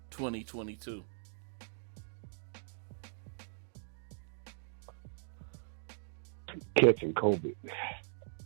2022? Catching COVID.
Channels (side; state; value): left; silent; digital silence